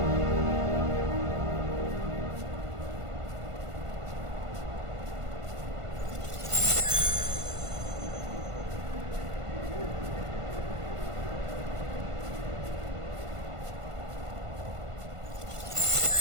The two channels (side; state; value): left; late; 1.5 ms